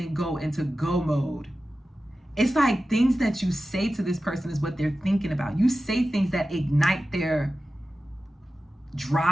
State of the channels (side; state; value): both; normal; correlation 0.94